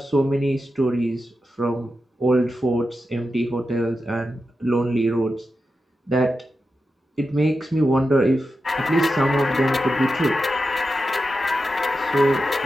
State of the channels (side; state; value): both; normal; correlation 0.90